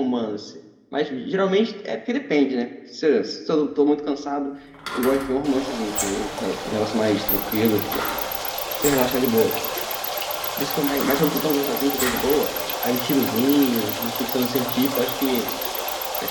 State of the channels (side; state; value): both; identical; correlation 1.00